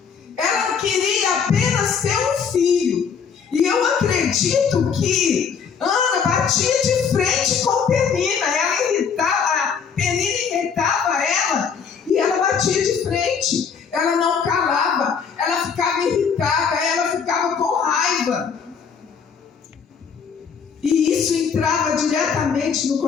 Ela queria apenas ter um filho. E eu acredito que Ana batia de frente com Penina. Penina irritava ela e ela batia de frente. Ela não calava. Ela ficava irritada. Ela ficava com raiva. E isso entrava diretamente no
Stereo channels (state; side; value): quieter; right; 6.5 dB